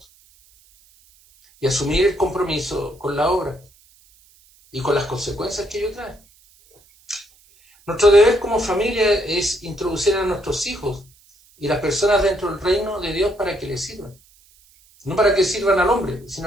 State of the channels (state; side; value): noise; right; hiss, 30 dB below the sound